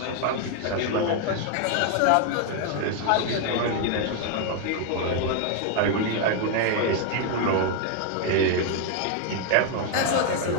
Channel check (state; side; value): different; both; correlation 0.00